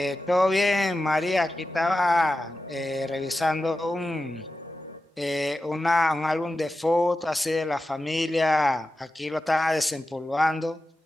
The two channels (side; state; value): both; normal; correlation 0.92